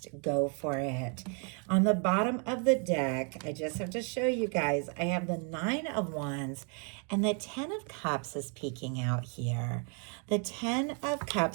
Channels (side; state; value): left; quieter; 38.5 dB